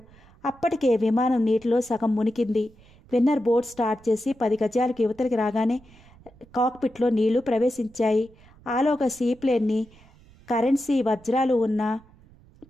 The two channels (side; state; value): right; noise; rumble, 26 dB below the sound